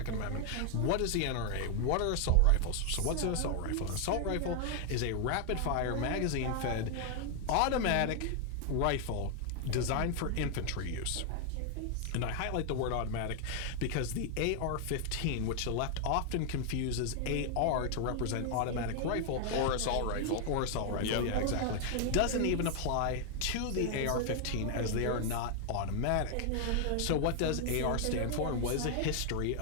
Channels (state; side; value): different; both; correlation 0.00